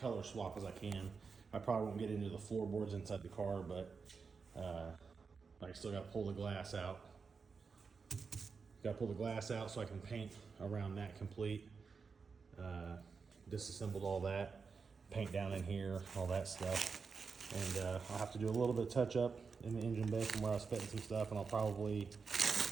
swap as I can. I probably won't get into the floorboards inside the car, but I still got to pull the glass out. Got to pull the glass out so I can paint around that complete. Disassembled all that, paint down in here, all that stuff. And I'll have to do a little bit of touch up in the engine bay from where I was fitting some stuff, and I'll probably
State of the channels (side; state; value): left; quieter; 5.1 dB